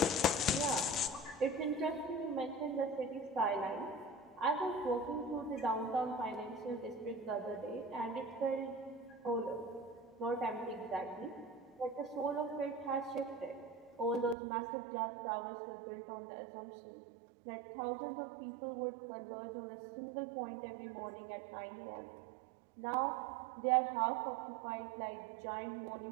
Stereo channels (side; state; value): left; drops out; at 14.4 s